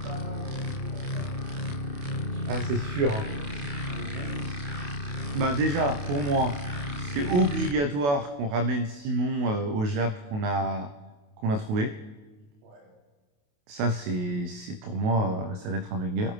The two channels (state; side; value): late; left; 28 ms